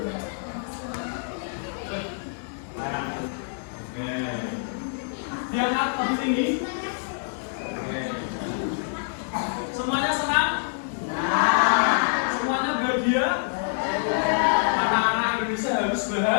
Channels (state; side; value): silent; right; digital silence